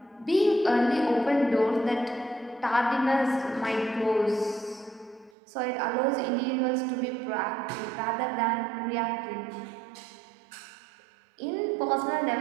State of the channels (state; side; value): drops out; left; at 5.3 s